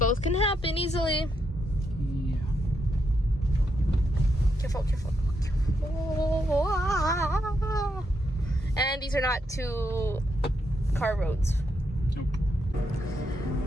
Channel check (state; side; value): normal; both; correlation 0.81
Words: can happen easily. Yeah. Careful. And these are not 2-car roads. Nope.